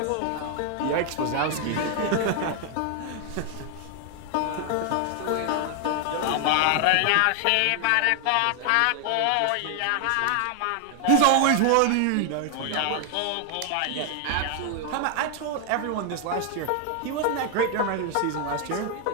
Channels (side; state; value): both; different; correlation 0.00